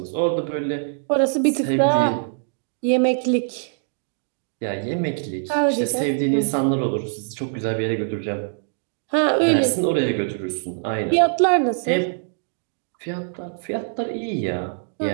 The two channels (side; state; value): left; silent; digital silence